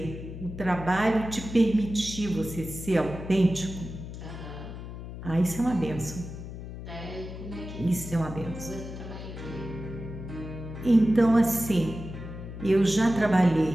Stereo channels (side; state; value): left; noise; hum, 10 dB below the sound